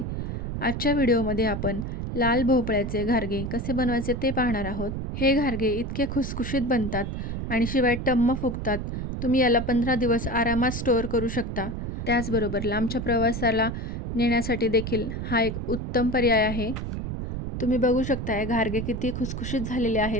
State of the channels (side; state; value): right; noise; rumble, 4 dB below the sound